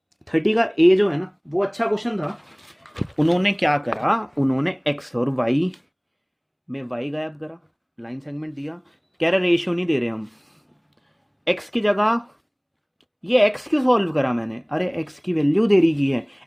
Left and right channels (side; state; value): both; identical; correlation 1.00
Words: 30 का ए जो है ना वो अच्छा क्वेश्चन था। उन्होंने क्या करा, उन्होंने एक्स और वाई में वाई गायब करा, लाइन सेगमेंट दिया, कह रहे रेशियो नहीं दे रहे हम, एक्स की जगह ये एक्स क्यों सॉल्व करा मैंने, अरे एक्स की वैल्यू दे रही की है,